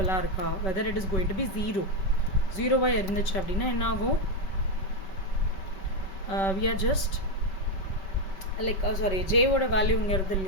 இருக்கா, whether it is going to be 0 வா இருந்துச்சு அப்படின்னா என்ன ஆகும், we are just like j ஓட value இங்க இருக்கு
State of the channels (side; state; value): right; late; 5.2 ms